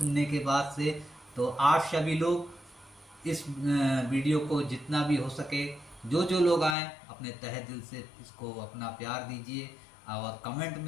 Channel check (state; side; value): drops out; right; at 6.8 s